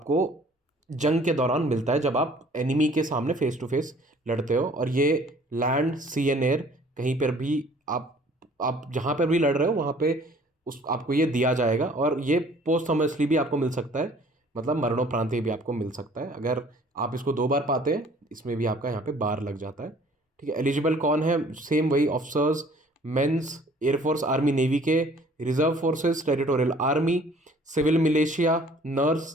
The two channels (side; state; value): both; normal; correlation 0.54